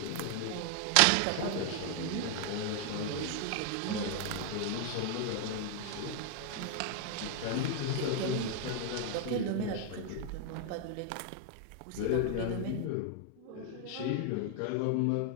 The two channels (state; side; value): different; both; correlation 0.00